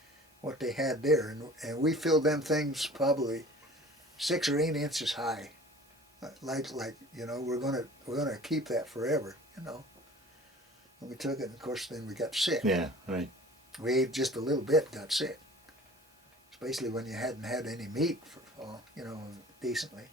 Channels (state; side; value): normal; both; correlation 0.45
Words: what they had there. And we filled them things probably 6 or 8 inches high. Like we're gonna keep that forever, And we took it, and of course then we got sick. Yeah, right. We ate just a little bit, got sick. Especially when you hadn't had any meat for decently.